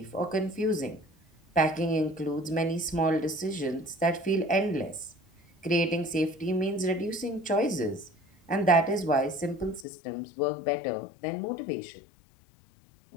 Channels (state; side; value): drops out; right; at 9.9 s